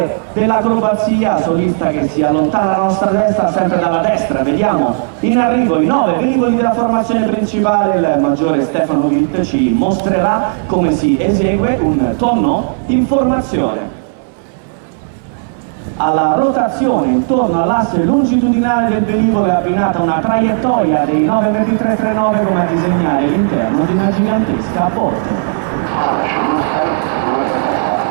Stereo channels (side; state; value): left; silent; digital silence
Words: dell'acrobazia, solista che si allontana dalla nostra destra, sempre dalla destra, vediamo in arrivo i 9 velivoli della formazione principale. Il maggiore Stefano Witt ci mostrerà come si esegue un tonno in formazione. Alla rotazione intorno all'asse longitudinale del velivolo è abbinata una traiettoria dei 92339 come a disegnare l'interno di una gigantesca botte.